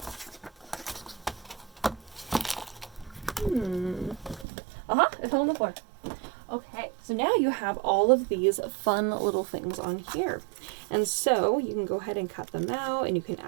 It fell on the floor. Okay, so now you have all of these fun little things on here. And so you can go ahead and cut them out and you can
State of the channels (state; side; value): drops out; left; at 4.5 s